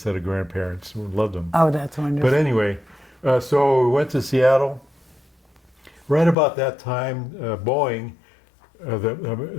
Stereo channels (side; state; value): right; drops out; at 6.4 s